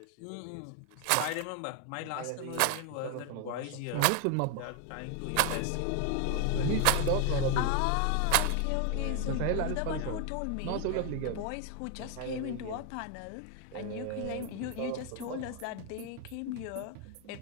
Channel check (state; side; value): different; both; correlation 0.01